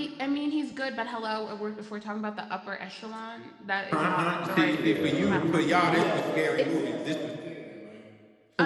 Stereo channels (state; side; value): identical; both; correlation 1.00